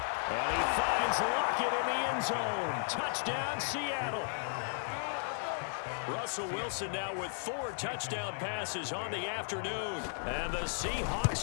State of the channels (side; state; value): right; silent; 55 dB below the other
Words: And he finds Lockett in the end zone. Touchdown, Seattle. Russell Wilson now with 4 touchdown passes on the afternoon. And the